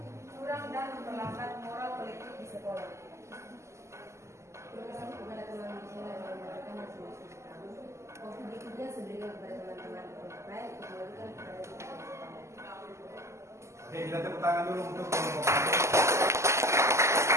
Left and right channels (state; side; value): late; left; 0.13 ms